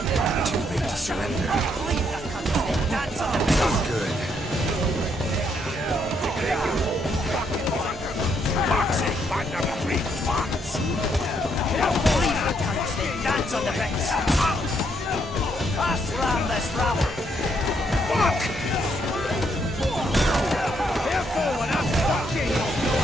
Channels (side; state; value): both; normal; correlation 0.73